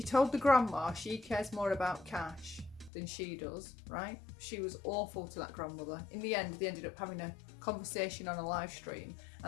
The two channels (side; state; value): right; drops out; at 2.9 s